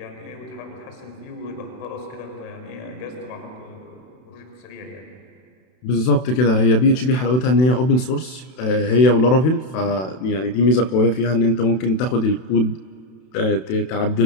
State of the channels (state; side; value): late; right; 32 ms